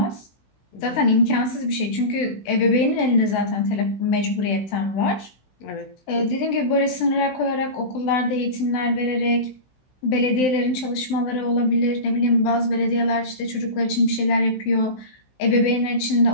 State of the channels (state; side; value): late; right; 16 ms